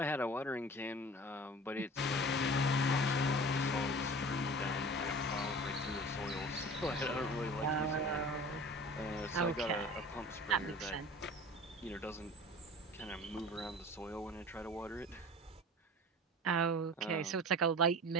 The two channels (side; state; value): both; normal; correlation 0.39